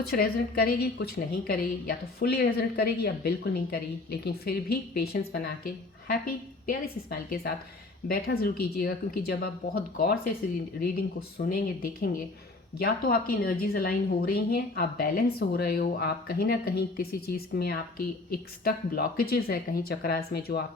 रेजोनेट करेगी कुछ नहीं करेगी, या तो फुली रेजोनेट करेगी या बिल्कुल नहीं करेगी, लेकिन फिर भी पेशेंस बना के हैप्पी प्यारी सी स्माइल के साथ बैठा ज़रूर कीजिएगा, क्योंकि जब आप बहुत गौर से इस रीडिंग को सुनेंगे, देखेंगे, या तो आपकी एनर्जीज अलाइन हो रही हैं, आप बैलेंस हो रहे हो, आप कहीं ना कहीं किसी चीज़ में आपकी एक स्टक ब्लॉकेजेस है कहीं चक्रास में जो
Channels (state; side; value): quieter; right; 3.2 dB